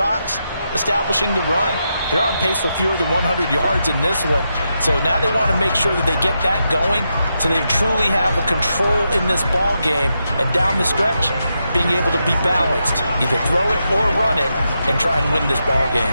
establishing the run. They're on pace for fewer than 100 yards in this one. So now they want to make sure that they get that going so they truly have a control in this ball game. And down the stretch, being able to be balanced. Either throw it or run it and try and win this ball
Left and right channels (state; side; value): inverted; both; correlation -0.85